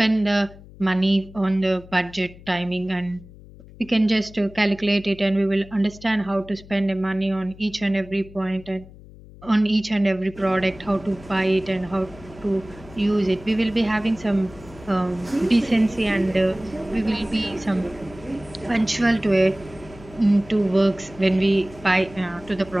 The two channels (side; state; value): left; noise; hum, 20 dB below the sound